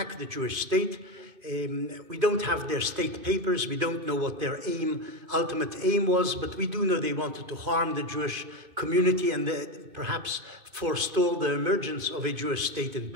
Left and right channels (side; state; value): left; late; 2.5 ms